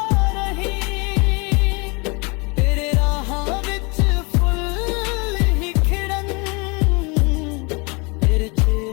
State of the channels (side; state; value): right; quieter; 29.9 dB